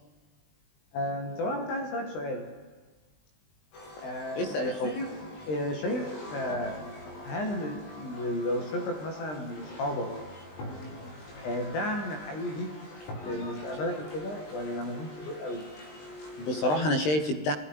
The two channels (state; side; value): late; right; 20 ms